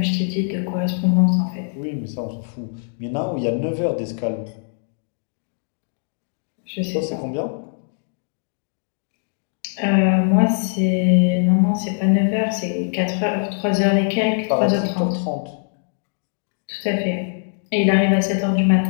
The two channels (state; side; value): silent; right; digital silence